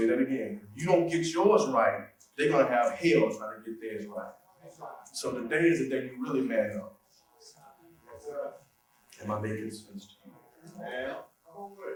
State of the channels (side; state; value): both; identical; correlation 1.00